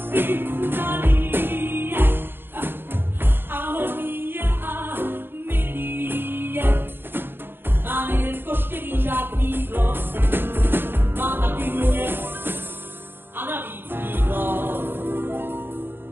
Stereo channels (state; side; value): late; left; 0.10 ms